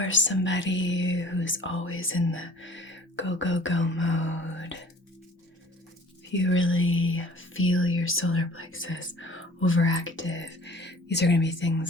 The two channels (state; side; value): normal; both; correlation 0.50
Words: somebody who's always in the go, go, go mode, if you really feel your solar plexus overactive, these are going to be